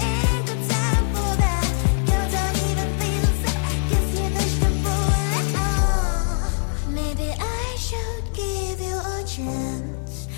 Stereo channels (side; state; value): right; silent; 57 dB below the other